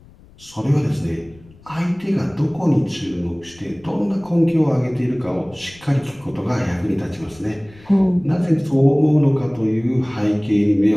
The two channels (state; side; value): noise; left; rumble, 25 dB below the sound